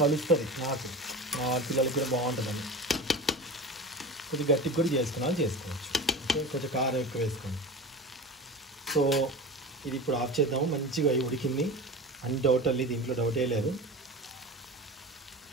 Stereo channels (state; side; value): normal; both; correlation 0.31